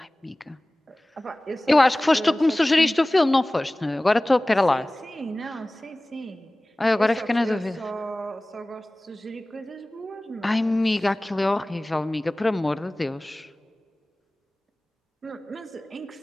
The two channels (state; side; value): normal; both; correlation 0.98